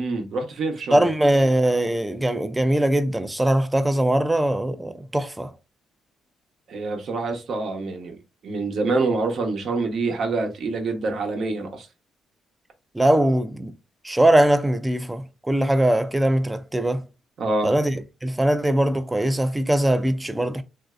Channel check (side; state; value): both; normal; correlation 0.94